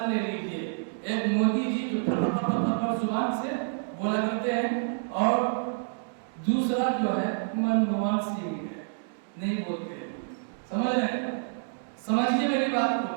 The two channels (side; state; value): left; silent; digital silence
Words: لے لیجیے ایک مودی جی جو زبان سے بولا کرتے ہیں اور دوسرا جو ہے منموہن سنگھ ہے نہیں بولتے سمجھ رہے ہیں سمجھیے میری بات